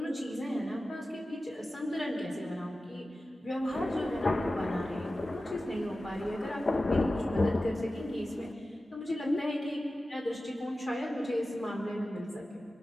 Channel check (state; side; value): normal; both; correlation 0.95